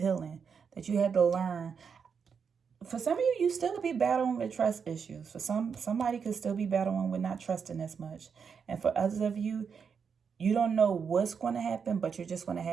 that you had to learn. For some of you, you still could be battling with trust issues. For somebody could still be battling with not trusting as much. And for others of you, you don't know what's going to happen, but you're just going to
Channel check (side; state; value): left; quieter; 6.4 dB